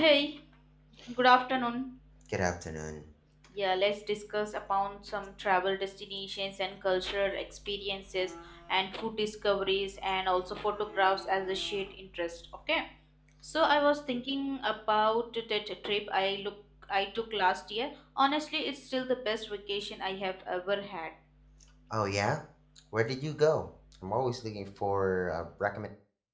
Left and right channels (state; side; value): identical; both; correlation 1.00